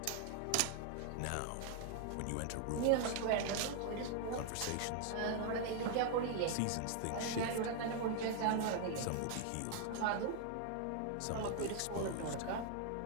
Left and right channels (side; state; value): both; different; correlation 0.00